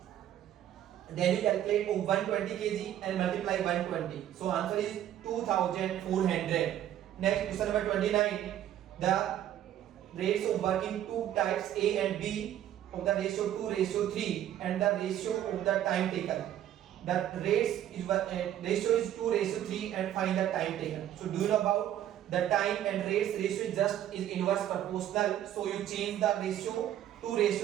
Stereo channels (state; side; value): quieter; left; 11.5 dB